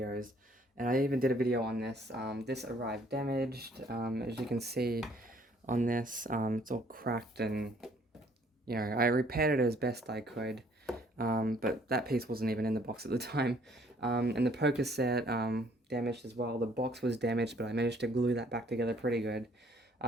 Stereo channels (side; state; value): both; normal; correlation 0.61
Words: and I even did a video on this. This arrived damaged, as you can see on this. It's all cracked, and I repaired it as best I could, but that piece wasn't even in the box at the time. And the poker set damaged as well. The box was damaged, but I managed to glue that back together pretty good.